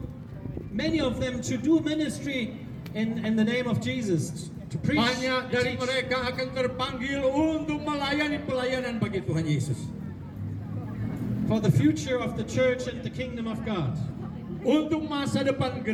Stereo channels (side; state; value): both; identical; correlation 1.00